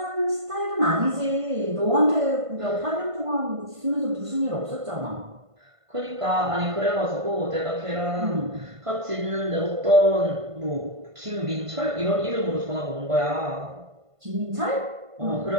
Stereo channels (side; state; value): left; late; 1.5 ms